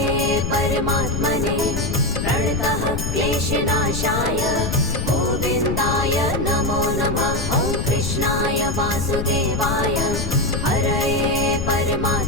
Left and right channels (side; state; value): left; noise; rumble, 3 dB below the sound